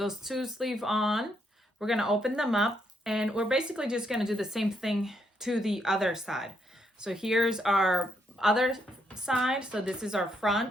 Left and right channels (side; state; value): both; normal; correlation 0.76